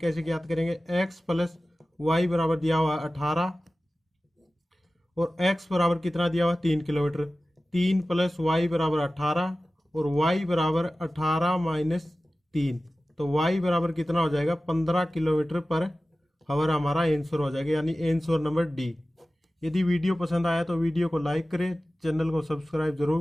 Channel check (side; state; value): both; normal; correlation 0.96